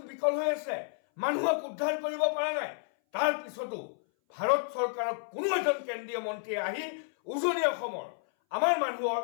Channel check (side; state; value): right; silent; 57 dB below the other